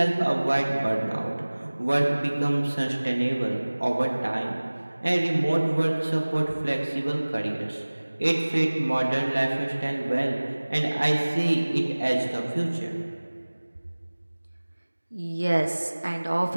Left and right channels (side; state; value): both; inverted; correlation -1.00